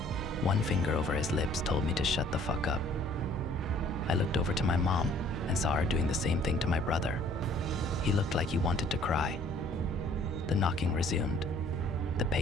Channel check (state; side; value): normal; both; correlation 0.57